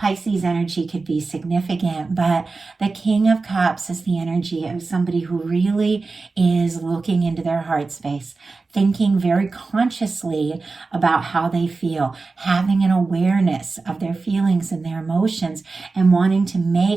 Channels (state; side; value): quieter; left; 3.9 dB